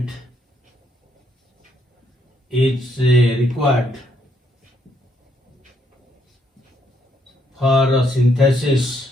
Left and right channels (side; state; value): both; normal; correlation 0.72